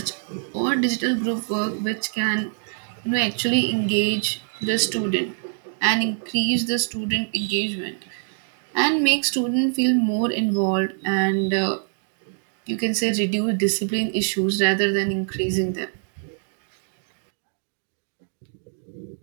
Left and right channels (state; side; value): silent; left; digital silence